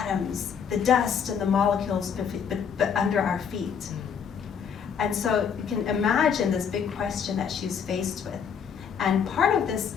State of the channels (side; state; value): right; quieter; 7.2 dB